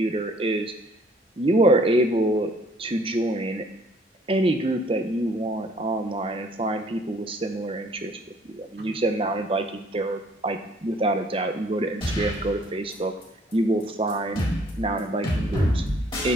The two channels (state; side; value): normal; both; correlation 0.59